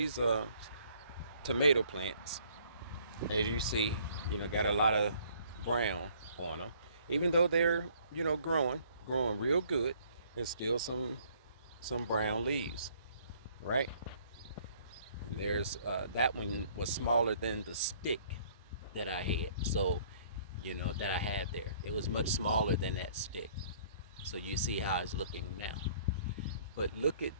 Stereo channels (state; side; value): inverted; both; correlation -0.59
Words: tomato plants, as you see, you know, got a lot of brown on them. Even though they're, you know, growing real good, there's still some brown leaves, right? There's that one was smaller than the stick that I had. So that I had there. It was much smaller than that stick. So you see how it's looking now. But look at